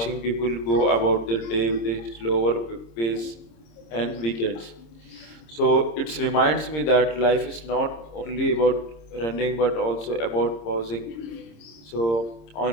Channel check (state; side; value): late; right; 26 ms